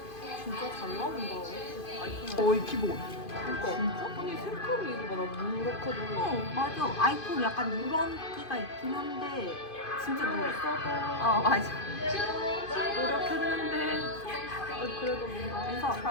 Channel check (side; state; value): right; late; 2.5 ms